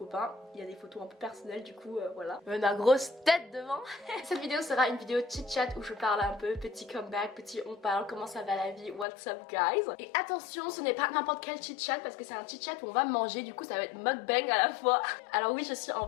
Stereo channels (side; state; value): right; drops out; at 9.1 s